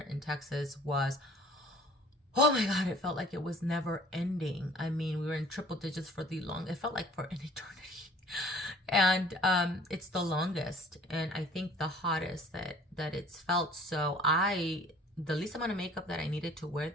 Texas was, oh my God, it felt like it was never ending. I mean, we were in triple digits for it felt like for an eternity. And it's the longest, and I think the hottest that it's felt. So the least amount of makeup that I needed to wear,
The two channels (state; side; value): normal; both; correlation 0.51